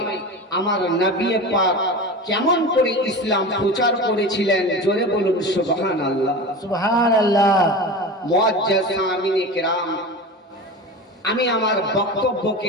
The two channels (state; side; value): normal; both; correlation 0.29